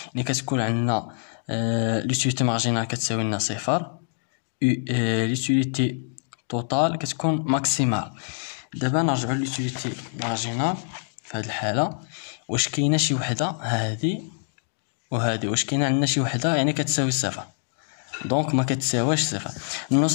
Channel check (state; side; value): silent; right; digital silence